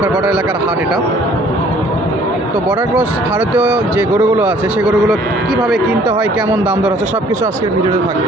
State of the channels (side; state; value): both; normal; correlation 0.57